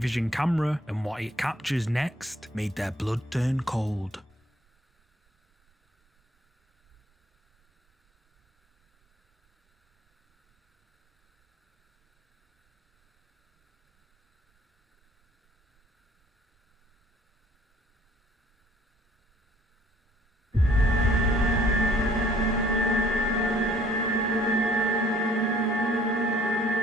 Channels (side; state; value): both; normal; correlation 0.59